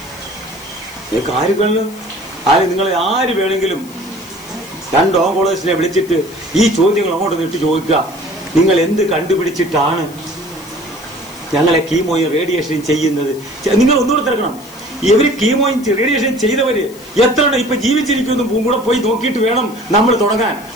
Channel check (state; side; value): noise; left; hiss, 21 dB below the sound